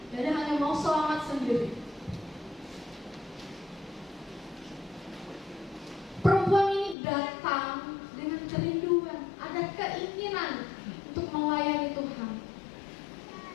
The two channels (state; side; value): drops out; right; at 7.0 s